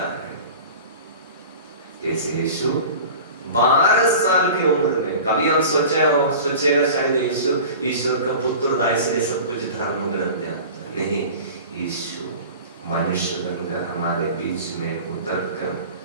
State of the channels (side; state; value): both; inverted; correlation -0.38